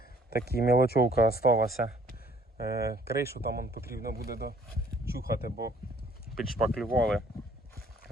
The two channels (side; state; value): both; normal; correlation 0.58